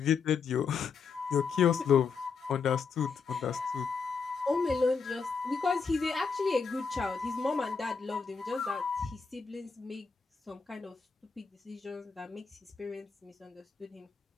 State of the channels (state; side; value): quieter; right; 5.5 dB